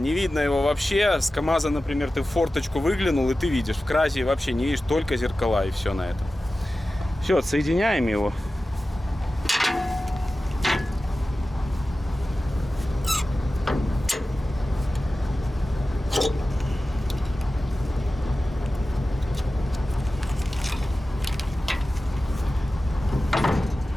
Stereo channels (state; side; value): normal; both; correlation 0.95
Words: видно его вообще. С КамАЗа, например, ты в форточку выглянул, и ты видишь. В Кразе вообще не видишь, только зеркала, и все на этом. Все, отсоединяем его.